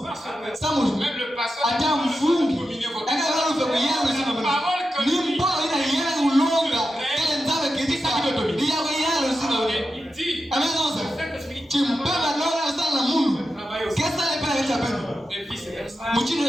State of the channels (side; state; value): both; normal; correlation 0.90